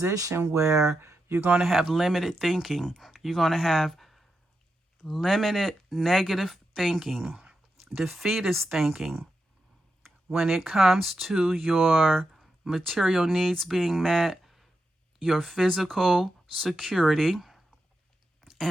where you're going to have limited thinking. You're going to have limited negative thinking, defeatist thinking when it comes to your material needs being met, your physical security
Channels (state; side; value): normal; both; correlation 0.87